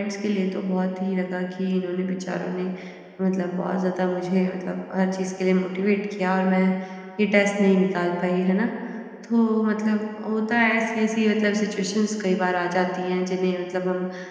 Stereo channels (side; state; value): both; identical; correlation 1.00